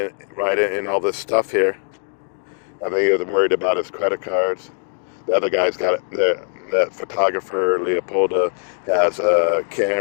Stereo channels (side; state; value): right; silent; 64 dB below the other